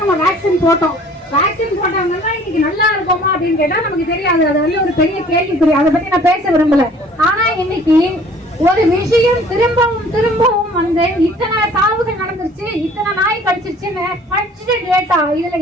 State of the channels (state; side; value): normal; both; correlation 0.53